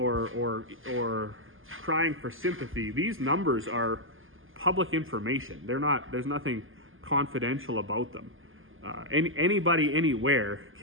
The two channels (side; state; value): left; late; 0.59 ms